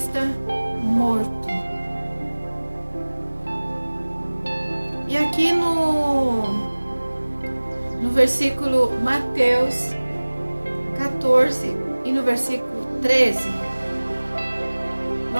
morto. E aqui no versículo Mateus 14 e no versículo 13,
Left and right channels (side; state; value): both; inverted; correlation -1.00